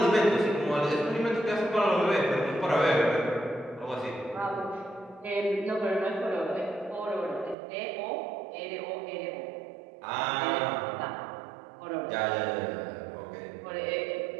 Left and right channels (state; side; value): drops out; left; at 7.6 s